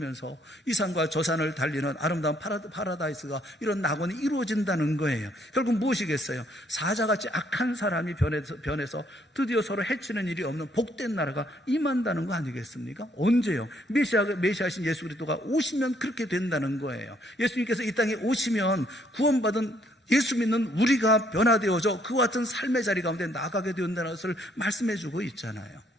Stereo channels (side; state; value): both; normal; correlation 0.68